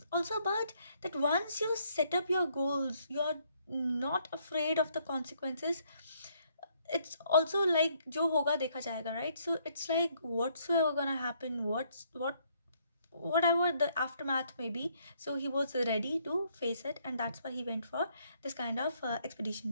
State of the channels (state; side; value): inverted; both; correlation -0.69